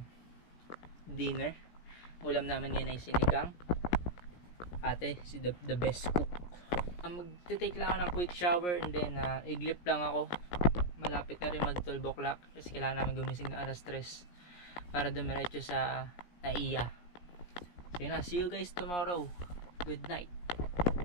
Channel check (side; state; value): right; late; 17 ms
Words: dinner. Ulam namin ngayon ay sinigang. Ate, si the best cook. Magte-take lang ako ng quick shower and then iglip lang ako. Malapit na rin mag 12 o'clock kasi kailangan namin gumising na alas 3 para dumiretso sa Naiya. So yun na, see you guys tomorrow. Good night.